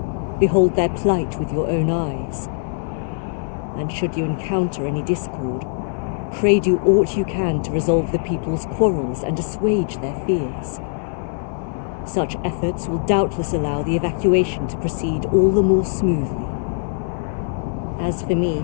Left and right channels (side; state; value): right; silent; 61 dB below the other